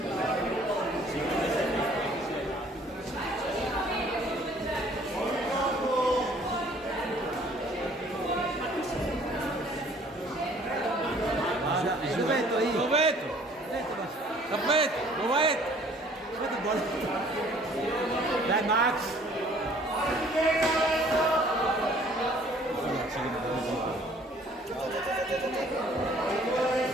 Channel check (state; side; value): normal; both; correlation 0.56